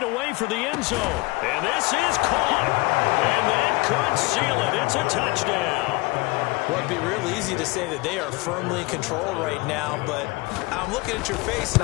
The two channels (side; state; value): right; quieter; 23.2 dB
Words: away for the end zone. And this is caught. And that could seal it. It's a touchdown. Well, it'd be real easy to say that they are firmly in control right now, but I'm looking at your face and